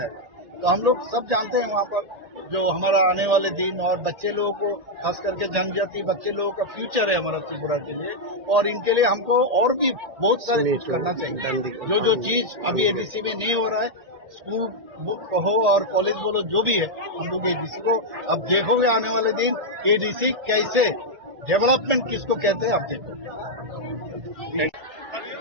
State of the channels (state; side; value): late; left; 1.8 ms